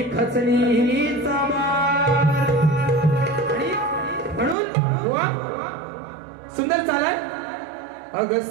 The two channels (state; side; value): drops out; left; at 4.5 s